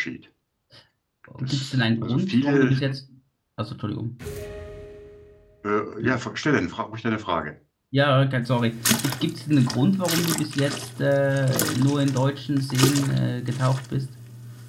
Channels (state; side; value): identical; both; correlation 1.00